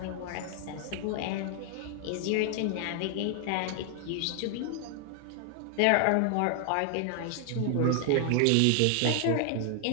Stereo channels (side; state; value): both; different; correlation 0.00